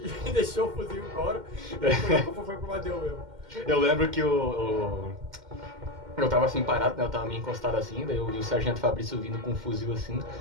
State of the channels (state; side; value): late; left; 2.1 ms